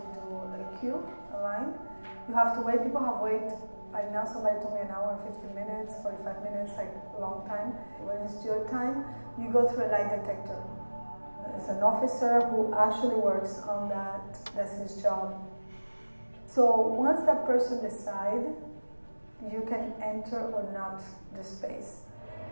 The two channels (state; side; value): inverted; both; correlation -1.00